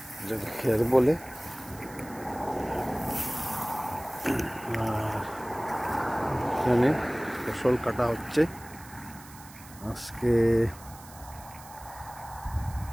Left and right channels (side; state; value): right; noise; hiss, 19 dB below the sound